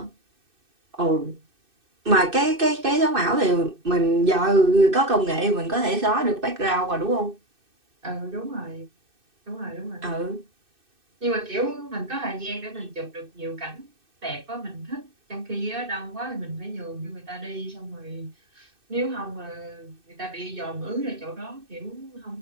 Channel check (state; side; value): late; left; 2.6 ms